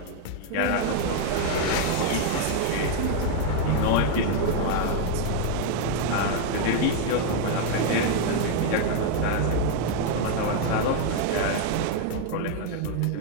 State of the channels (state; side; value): different; both; correlation 0.01